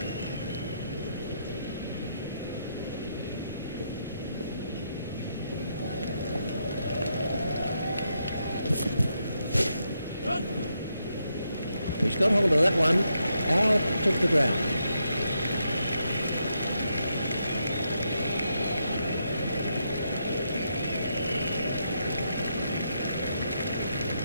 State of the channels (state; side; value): inverted; both; correlation -0.80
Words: He's got hold of that one, out of the ground.